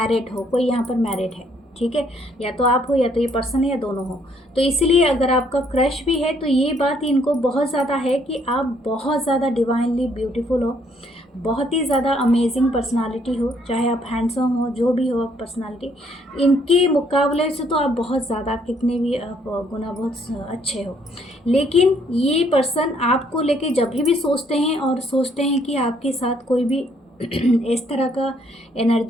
हो, कोई यहाँ पर मैरिड है। ठीक है, या तो आप हो या तो ये पर्सन है या दोनों हो। तो इसलिए अगर आपका क्रश भी है तो ये बात इनको बहुत ज़्यादा है कि आप बहुत ज़्यादा डिवाइनली ब्यूटीफुल हो, बहुत ही ज़्यादा अमेजिंग पर्सनालिटी हो, चाहे आप हैंडसम हो, जो भी हो आप पर्सनालिटी, इनके मुकाबले से तो आप बहुत ज़्यादा कितने भी आप गुना बहुत अच्छे हो। लेकिन ये पर्सन आपको लेके जब भी सोचते हैं और सोचते हैं कि आपके साथ कोई भी इस तरह का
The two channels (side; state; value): both; normal; correlation 0.67